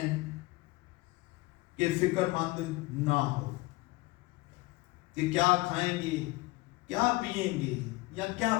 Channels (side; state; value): right; quieter; 21.6 dB